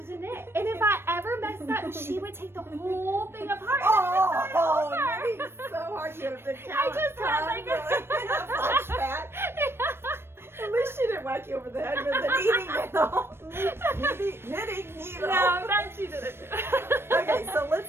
knit, and if I ever messed up, she would take the whole thing apart. Oh, knitting so hard. You have to count. I just had like a flashback. At least she didn't whack you over the head with the knitting needle. No, that she didn't. Okay, so let's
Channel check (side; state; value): left; late; 0.12 ms